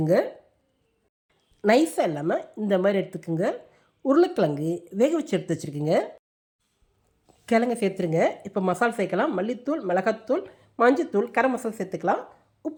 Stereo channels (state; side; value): identical; both; correlation 1.00